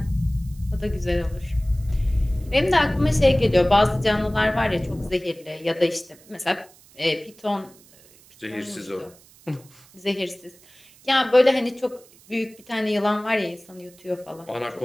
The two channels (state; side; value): noise; right; hiss, 26 dB below the sound